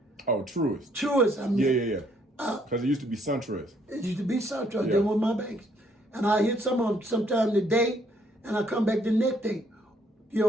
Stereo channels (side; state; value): both; normal; correlation 0.67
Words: Oh, Truist. Truist, I mean. Yeah. Because it used to be SunTrust. It used to be SunTrust. They were my banks. And I hit some of them sometime today, and I come back the next day. You